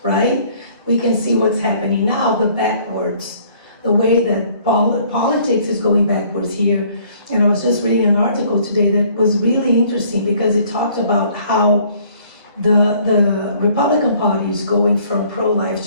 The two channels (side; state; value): both; inverted; correlation -0.59